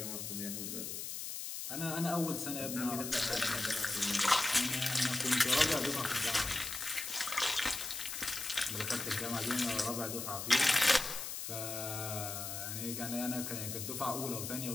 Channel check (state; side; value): noise; left; hiss, 5 dB below the sound